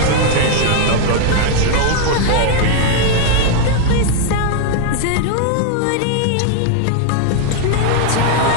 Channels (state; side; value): different; both; correlation 0.00